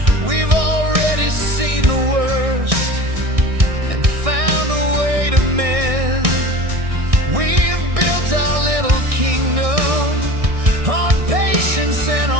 We've already seen the worst and found a way to mend. We've built our little kingdom on patience and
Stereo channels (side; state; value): left; late; 1.6 ms